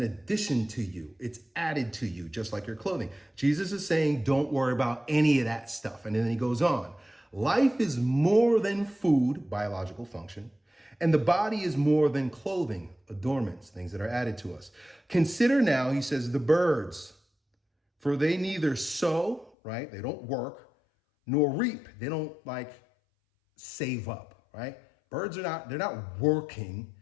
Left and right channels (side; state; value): right; drops out; at 19.5 s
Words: addition to you. It's added to you, just like your clothing. Jesus is saying, don't worry about any of that stuff. And then he goes on. Life is more than food, biological function, and the body is more than clothing, adornments, things that are added to us. Consider now, he says, the birds, for they neither sow, right? They don't work, nor reap. They don't save up, right? Birds they're not working,